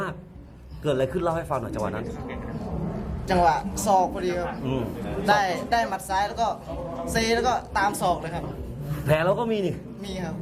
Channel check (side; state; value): both; identical; correlation 1.00